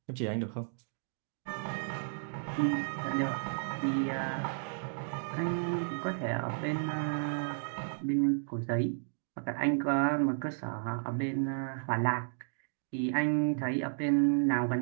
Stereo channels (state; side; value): silent; left; digital silence